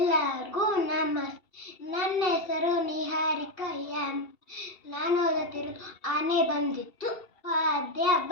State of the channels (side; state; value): right; late; 2.7 ms